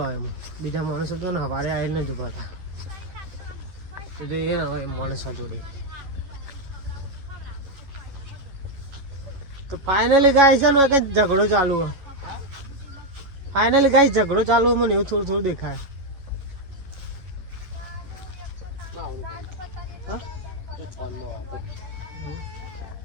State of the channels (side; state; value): left; late; 11 ms